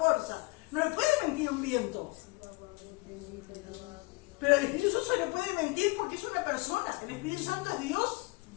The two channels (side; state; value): right; quieter; 25.8 dB